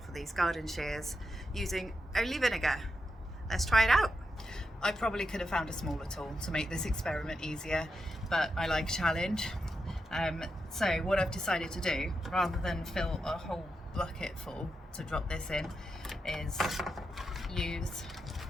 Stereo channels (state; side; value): normal; both; correlation 0.86